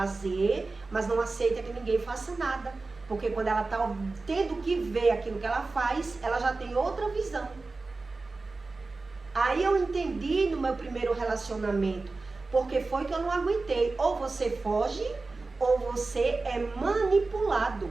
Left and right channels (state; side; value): quieter; left; 3.6 dB